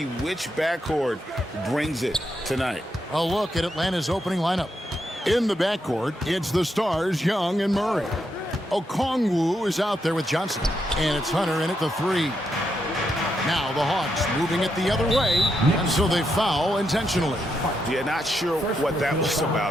which backcourt brings it tonight. A look at Atlanta's opening lineup. In the backcourt, it's the stars, Young and Murray. Okongwu is out there with Johnson, and it's Hunter in at the 3. Now the Hawks moving it the other way, and so they foul intentionally. Yeah, not sure what that was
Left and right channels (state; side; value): normal; both; correlation 0.81